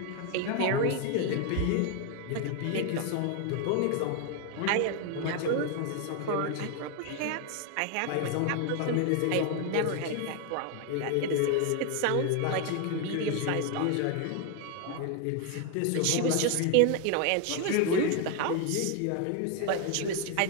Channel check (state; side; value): different; both; correlation 0.01